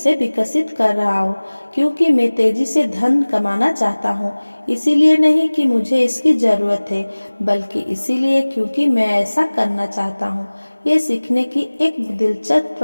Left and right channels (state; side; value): inverted; both; correlation -1.00